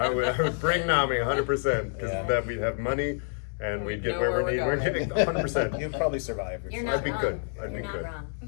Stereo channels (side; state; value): right; silent; 60 dB below the other